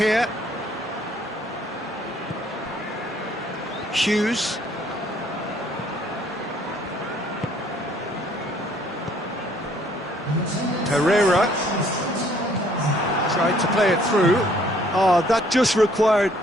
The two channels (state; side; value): normal; both; correlation 0.62